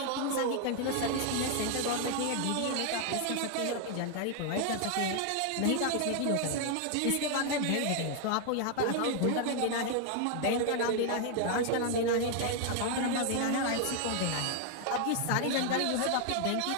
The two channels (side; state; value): both; different; correlation 0.00